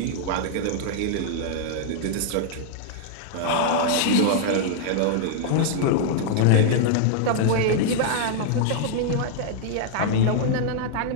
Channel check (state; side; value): different; both; correlation -0.01